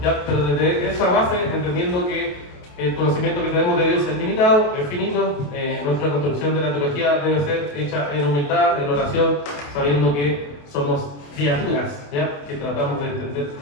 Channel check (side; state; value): right; late; 28 ms